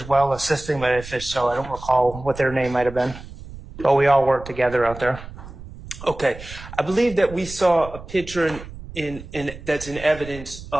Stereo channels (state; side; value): noise; right; rumble, 14 dB below the sound